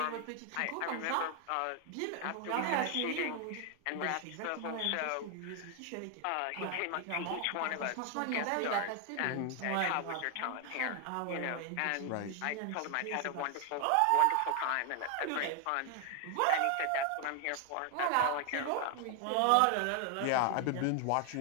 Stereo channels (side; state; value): both; different; correlation 0.01